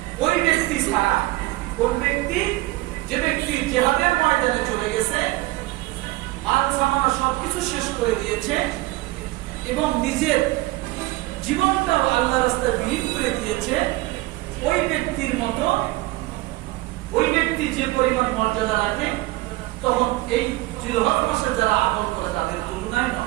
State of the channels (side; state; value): left; quieter; 19.6 dB